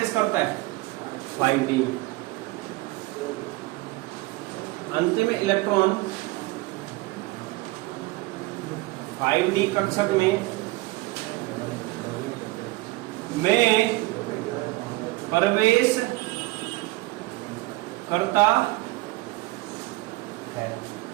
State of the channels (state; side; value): quieter; left; 21.2 dB